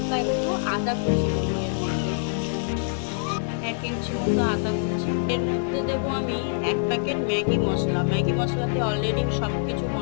একটু আদা কুচি দেবো এর মধ্যে। 1 ইঞ্চি মতো আদা কুচি। এর মধ্যে দেবো আমি 1 প্যাকেট ম্যাগি মশলা। ম্যাগি মশলাতে অলরেডি সব কিছু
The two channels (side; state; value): right; silent; 62 dB below the other